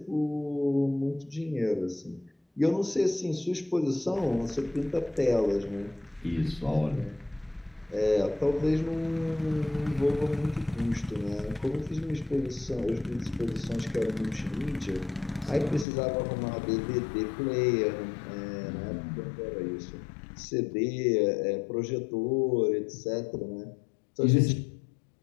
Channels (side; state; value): right; drops out; at 15.9 s